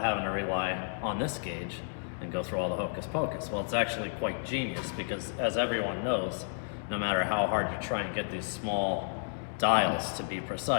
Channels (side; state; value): right; silent; digital silence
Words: having to rely on this gauge and go through all the hocus pocus. Well, it's actually quite genius because, as everyone knows, no matter how hard you try and get these small dials to be